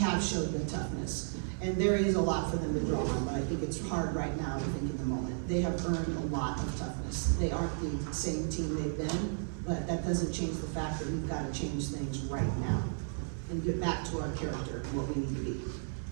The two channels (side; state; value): left; silent; 55 dB below the other